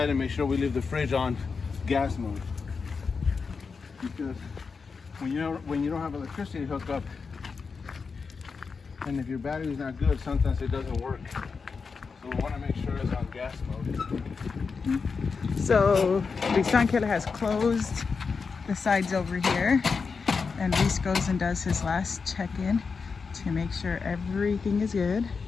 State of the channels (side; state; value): right; quieter; 5.1 dB